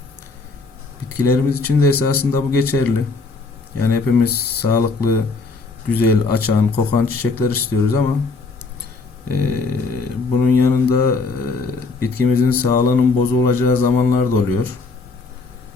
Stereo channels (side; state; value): right; quieter; 4.1 dB